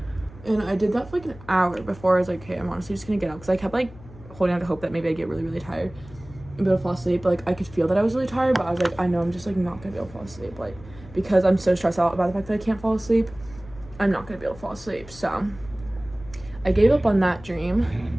And I did that for like an hour before I was like, okay, I'm honestly just gonna get up, because I kept like holding out to hope that maybe I'd get really, really tired and be able to fall asleep. But like I could feel that I was really tired, but I was like, I know I'm just like not gonna be able to fall asleep, like because I'm so stressed out about the fact that I can't fall asleep. I'm not gonna be able to fall asleep. So I gave up on that dream,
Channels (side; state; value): left; noise; hum, 19 dB below the sound